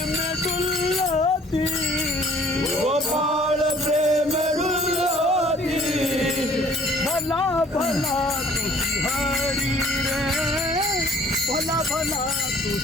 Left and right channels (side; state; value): both; normal; correlation 0.55